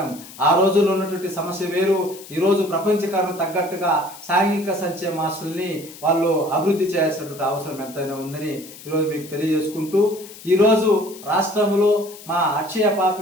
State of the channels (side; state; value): left; noise; hiss, 17 dB below the sound